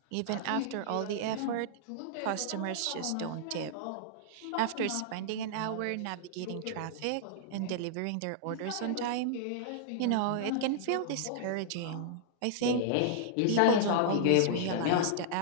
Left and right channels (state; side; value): different; both; correlation -0.01